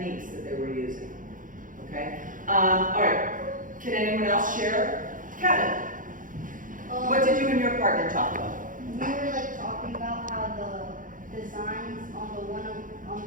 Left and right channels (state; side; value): late; left; 0.39 ms